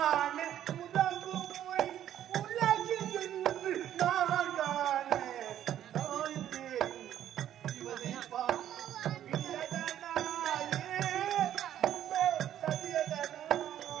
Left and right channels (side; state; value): left; quieter; 11.2 dB